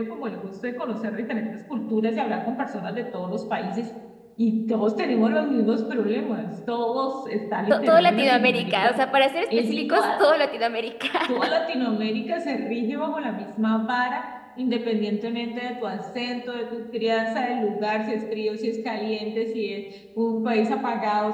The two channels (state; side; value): identical; both; correlation 1.00